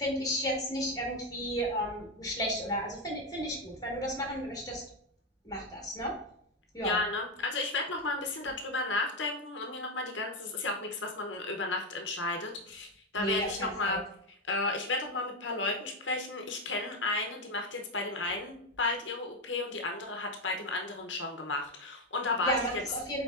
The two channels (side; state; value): both; normal; correlation 0.08